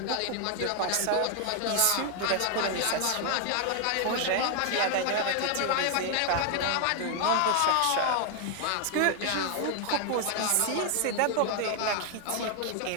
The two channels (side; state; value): both; different; correlation 0.00